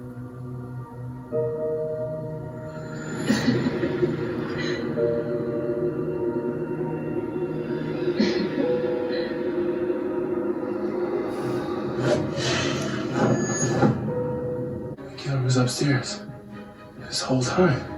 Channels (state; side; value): identical; both; correlation 1.00